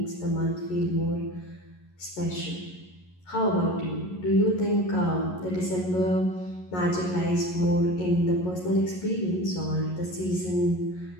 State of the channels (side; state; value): right; late; 11 ms